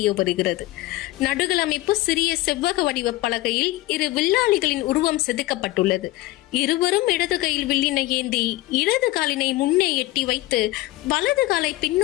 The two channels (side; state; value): right; quieter; 18.2 dB